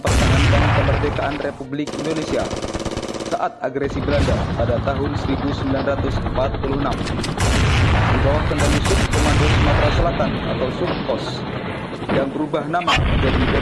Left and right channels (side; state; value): both; identical; correlation 1.00